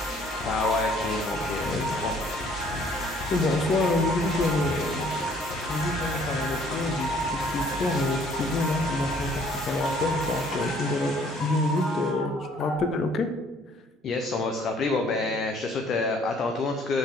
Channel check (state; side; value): normal; both; correlation 0.60